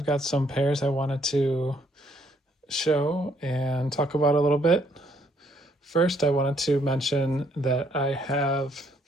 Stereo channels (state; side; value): normal; both; correlation 0.68